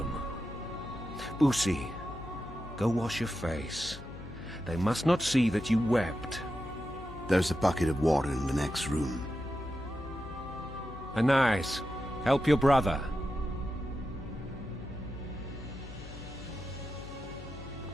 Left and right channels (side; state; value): left; noise; hum, 13 dB below the sound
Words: Boosie, go wash your face. They must not see that you wept. There's a bucket of water in the next room. Anais, help your brother.